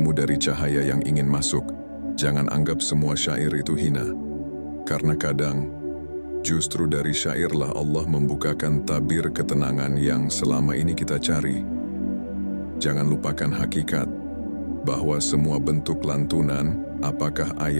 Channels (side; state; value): both; inverted; correlation -1.00